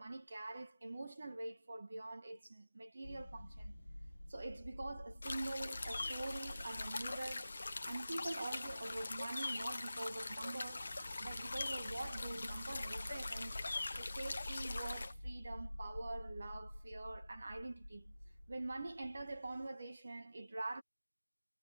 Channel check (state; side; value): inverted; both; correlation -0.95